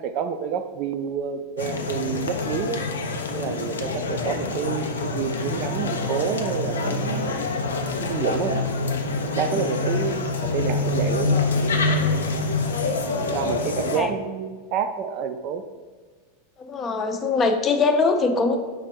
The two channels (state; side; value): normal; both; correlation -0.05